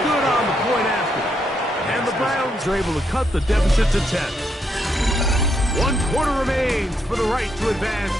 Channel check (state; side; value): normal; both; correlation 0.78